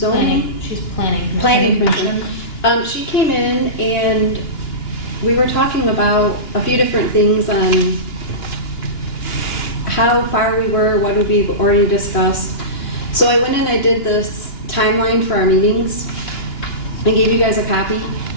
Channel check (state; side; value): late; right; 2.9 ms